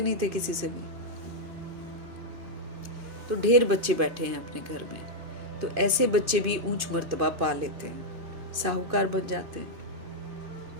नहीं थे किसी से भी। तो ढेर बच्चे बैठे हैं अपने घर में, तो ऐसे बच्चे भी ऊंच मर्तबा पा लेते हैं, साहूकार बन जाते हैं।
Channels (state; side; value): late; left; 2.6 ms